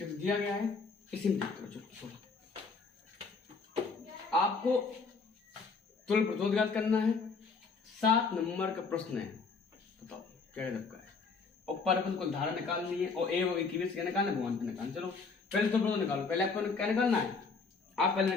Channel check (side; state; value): right; quieter; 4.6 dB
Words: गया है, इसी में चलो आपको तुल्य प्रतिरोध करना है। 7 नंबर का प्रश्न है, बताओ क्या का है, और परपथ को धारा निकालनी है और ए और की क्या निकालना है, भगवान को निकालना। चलो पहले तुल्य प्रतिरोध निकालो, पहले आपको क्या निकालना है, आप पहले